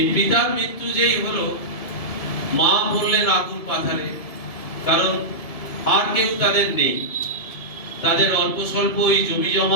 পিতার মৃত্যু যেই হলো, মা বললেন আকুল পাথারে, কারণ আর কেউ তাদের নেই। তাদের অল্প স্বল্প এই জমি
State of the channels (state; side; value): late; right; 1.7 ms